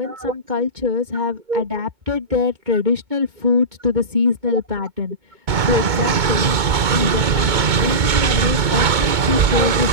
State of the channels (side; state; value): left; late; 2.2 ms